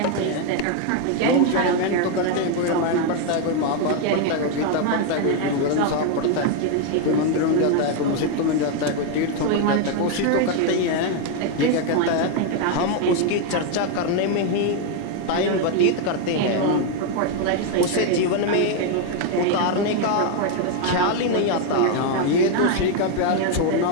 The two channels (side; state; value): both; different; correlation 0.01